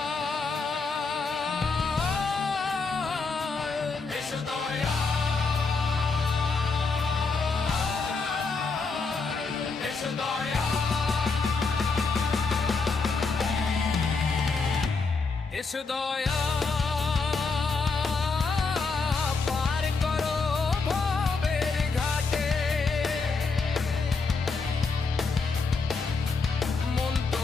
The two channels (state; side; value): quieter; right; 4.4 dB